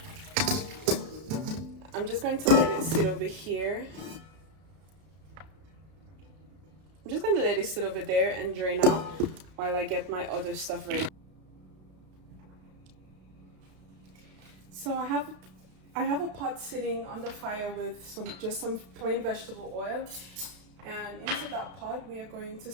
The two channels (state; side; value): late; left; 32 ms